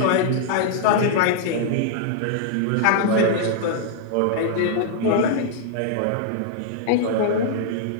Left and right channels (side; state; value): both; different; correlation -0.01